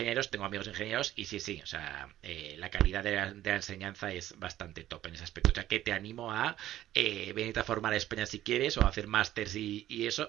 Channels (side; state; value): left; quieter; 13.4 dB